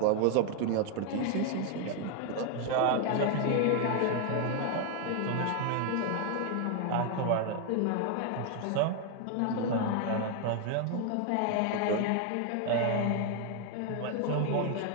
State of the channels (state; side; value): different; both; correlation 0.01